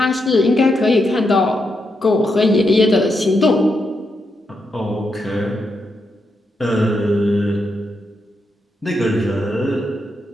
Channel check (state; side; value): normal; both; correlation 0.83